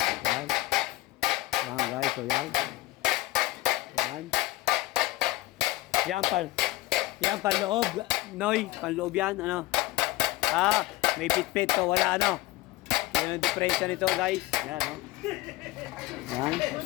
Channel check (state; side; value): quieter; right; 18.7 dB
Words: Yan. Yan guys, so yan. Yan. Yan panloob, Noy, panloob yan, ano. May pit-pit to, wala ano. Yan yung diferensya nito guys. Yan, no. Yan.